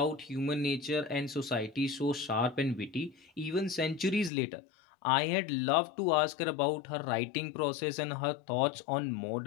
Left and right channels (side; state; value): right; drops out; at 4.3 s